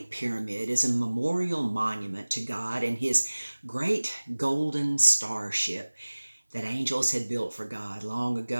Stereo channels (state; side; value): inverted; both; correlation -1.00